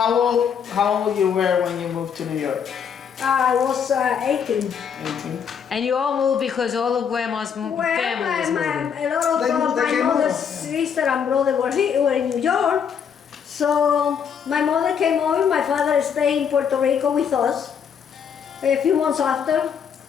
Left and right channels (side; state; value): right; quieter; 7.4 dB